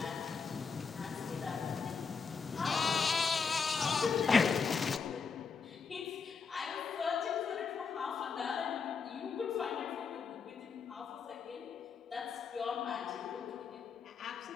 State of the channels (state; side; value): quieter; right; 5.5 dB